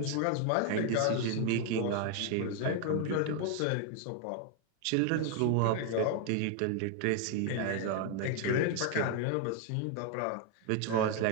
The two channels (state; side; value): different; both; correlation 0.00